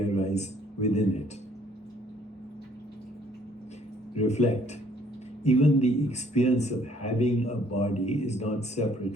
arise within it? Reflect. Even the experience of having a body is not separate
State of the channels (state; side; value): normal; both; correlation 0.62